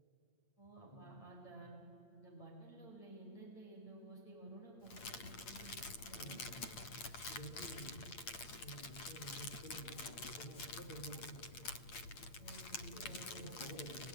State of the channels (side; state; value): right; late; 8.8 ms